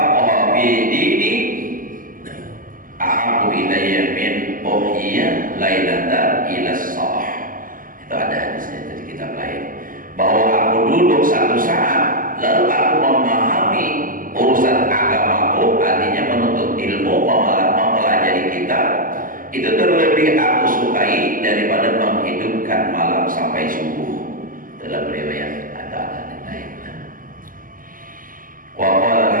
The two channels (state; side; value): late; left; 0.40 ms